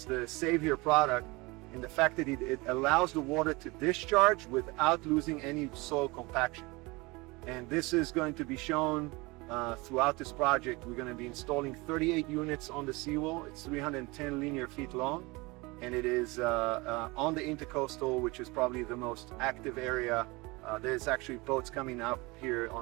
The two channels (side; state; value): left; quieter; 24.5 dB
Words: the savior product in the fact that it allows the water to discharge without losing any soil compaction. And this is going to be shown throughout this project. We're going to be installing 38 units on the seawall. It's 310 linear feet long, and it is on the intercoastal, which is probably the most active area. There's actually boats coming up here